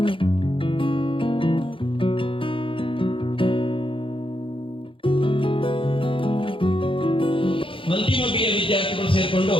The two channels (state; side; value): late; right; 0.25 ms